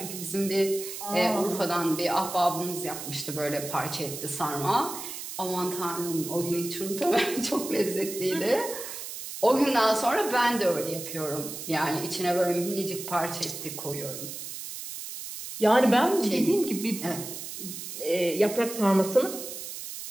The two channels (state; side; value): noise; right; hiss, 9 dB below the sound